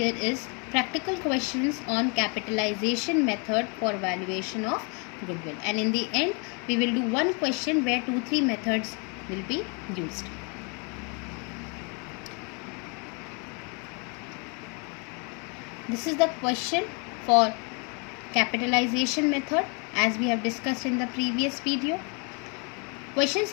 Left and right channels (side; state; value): right; quieter; 34.4 dB